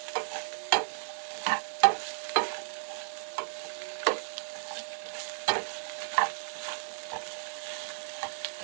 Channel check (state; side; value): silent; left; digital silence